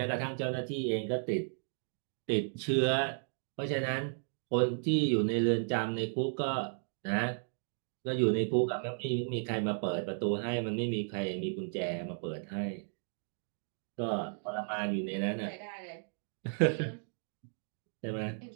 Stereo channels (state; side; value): silent; left; digital silence